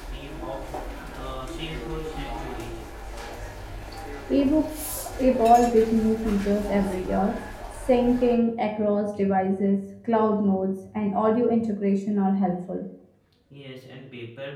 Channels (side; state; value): both; identical; correlation 1.00